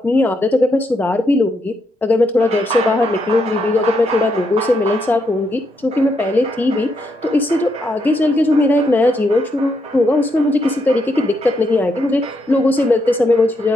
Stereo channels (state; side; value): normal; both; correlation 0.79